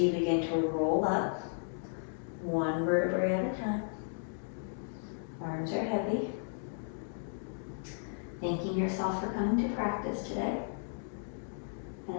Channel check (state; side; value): silent; right; digital silence